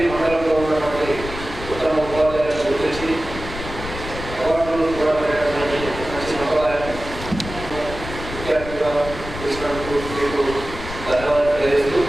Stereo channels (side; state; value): left; noise; rumble, 10 dB below the sound